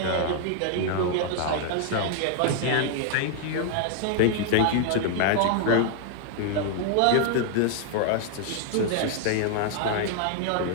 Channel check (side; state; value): both; different; correlation 0.00